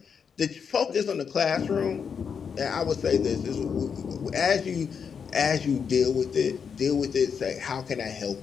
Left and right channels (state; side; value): quieter; right; 6.6 dB